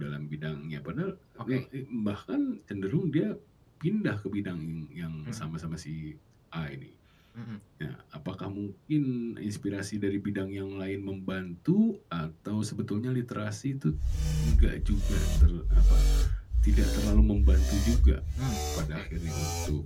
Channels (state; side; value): identical; both; correlation 1.00